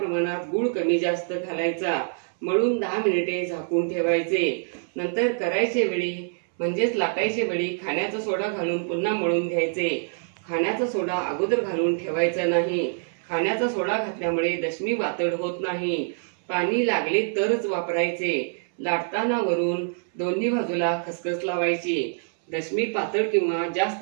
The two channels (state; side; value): silent; left; 61 dB below the other